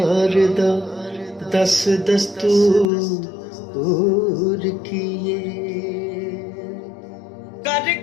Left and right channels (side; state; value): right; drops out; at 2.9 s